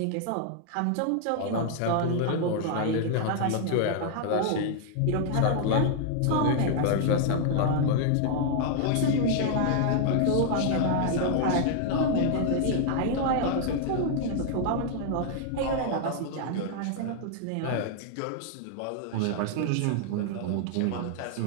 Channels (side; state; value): both; different; correlation 0.00